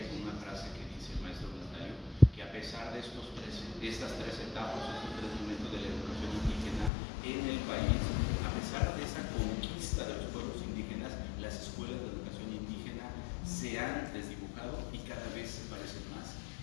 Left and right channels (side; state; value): right; drops out; at 6.9 s